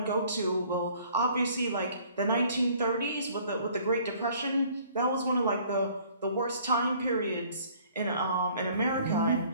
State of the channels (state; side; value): inverted; both; correlation -0.56